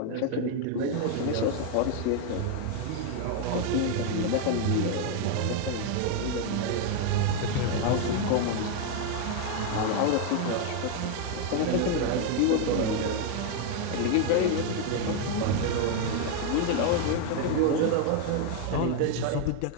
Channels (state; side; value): different; both; correlation 0.01